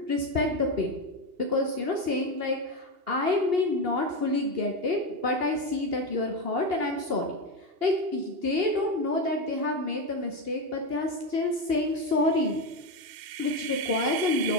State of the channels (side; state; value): left; late; 2.8 ms